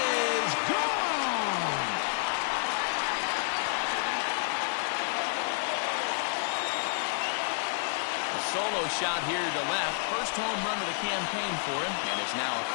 is gone! A solo shot here to left. First home run of the campaign for him, and it's now a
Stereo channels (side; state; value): right; silent; 58 dB below the other